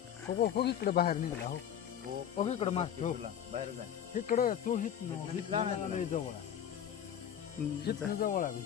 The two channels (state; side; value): quieter; right; 9.4 dB